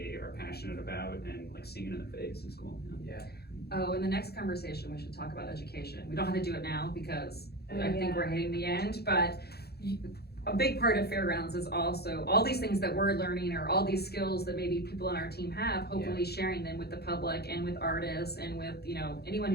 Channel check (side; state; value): right; late; 0.46 ms